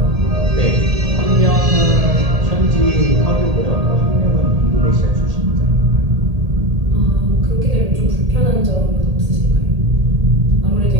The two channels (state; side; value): late; left; 1.8 ms